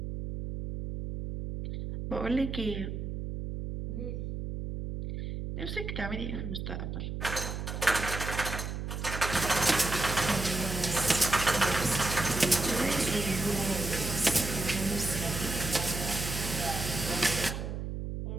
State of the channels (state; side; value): noise; right; hum, 5 dB below the sound